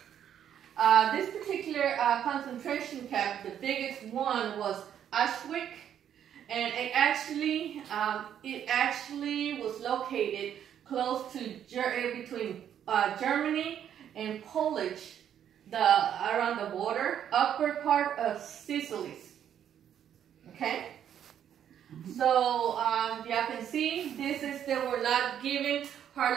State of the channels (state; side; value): quieter; left; 9.6 dB